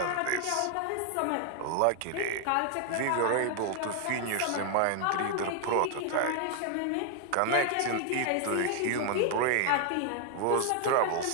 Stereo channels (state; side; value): different; both; correlation 0.00